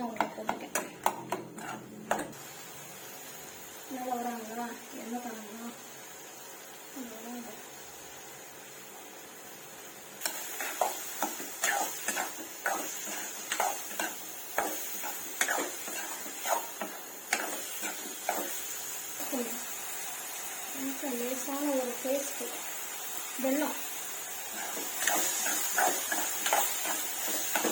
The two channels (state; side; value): identical; both; correlation 1.00